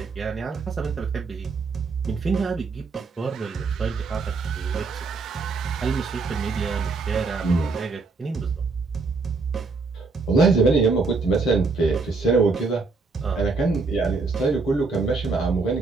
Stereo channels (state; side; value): quieter; left; 4.1 dB